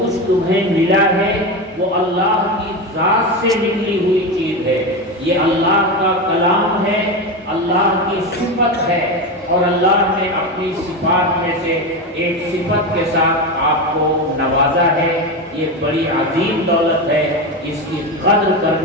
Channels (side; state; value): both; normal; correlation 0.18